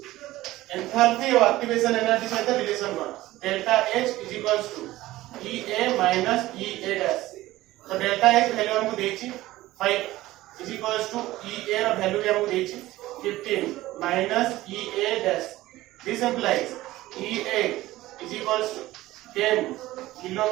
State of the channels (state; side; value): quieter; left; 16.9 dB